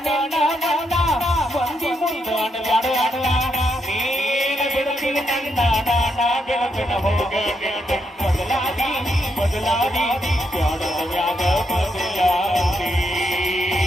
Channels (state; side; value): normal; both; correlation 0.79